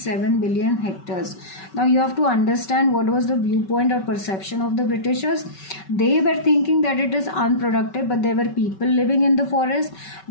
billion hectares. Now you have to understand what was the viewpoint or perception of the Britishers. They were thinking that it is unproductive, but there were people living in the forest.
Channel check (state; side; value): late; right; 5.3 ms